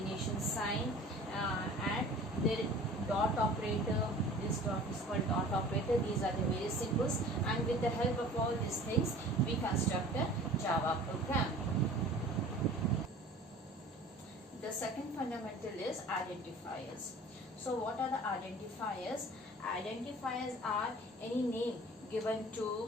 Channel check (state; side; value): normal; both; correlation 0.44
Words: sign, and the dot operator. This dot is called dot operator. These are the various symbols, and with the help of all these things we construct a Java program. The second fundamental is identifiers. So what are the identifiers? Identifiers are any name given